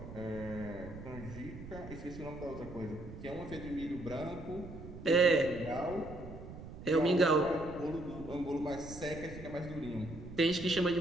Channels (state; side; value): noise; right; rumble, 12 dB below the sound